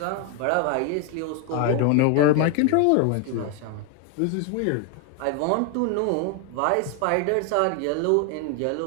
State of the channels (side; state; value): both; different; correlation 0.01